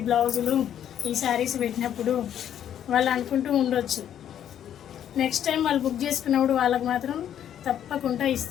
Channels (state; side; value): quieter; right; 10.1 dB